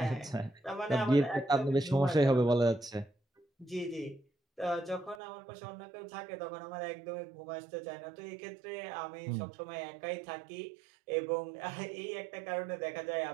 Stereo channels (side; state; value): left; drops out; at 5.2 s